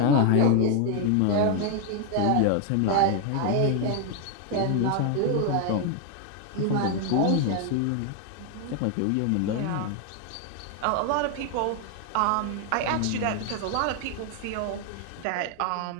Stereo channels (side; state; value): both; different; correlation 0.01